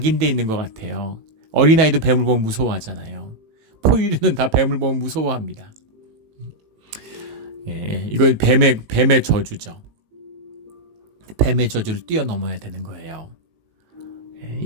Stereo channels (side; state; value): left; late; 18 ms